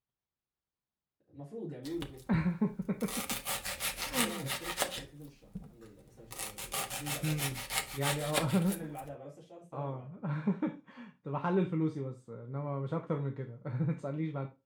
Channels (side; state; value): both; identical; correlation 1.00